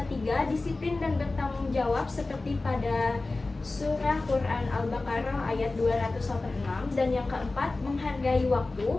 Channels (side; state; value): right; quieter; 3.3 dB